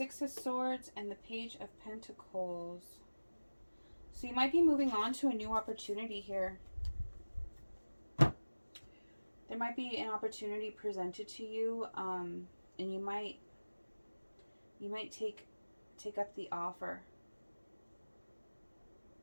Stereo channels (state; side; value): inverted; both; correlation -1.00